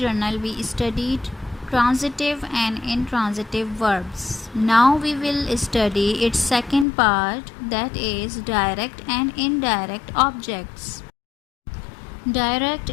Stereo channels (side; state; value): right; drops out; at 6.9 s